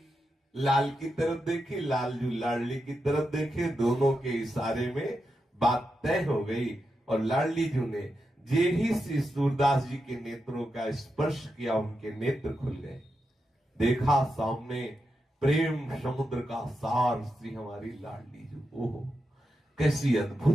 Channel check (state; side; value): normal; both; correlation 0.87